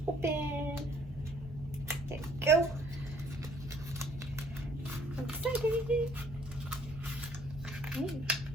Open. There you go. I'm excited.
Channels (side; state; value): both; normal; correlation 0.61